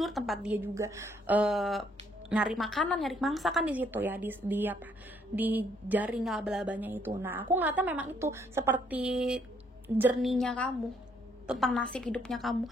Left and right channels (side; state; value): both; normal; correlation 0.68